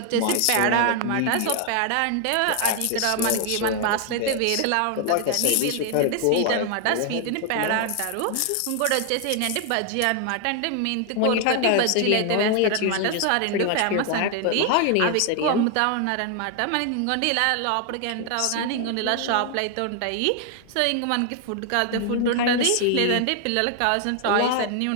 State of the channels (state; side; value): different; both; correlation 0.00